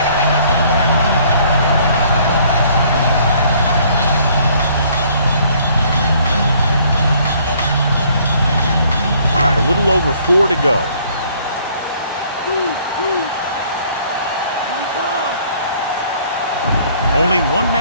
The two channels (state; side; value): inverted; both; correlation -0.60